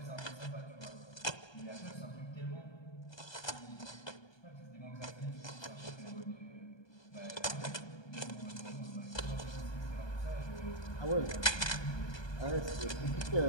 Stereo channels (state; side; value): late; right; 1.2 ms